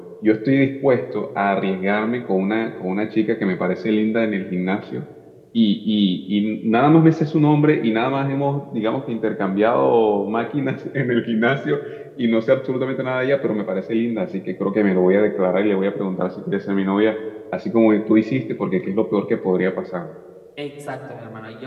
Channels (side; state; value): both; identical; correlation 1.00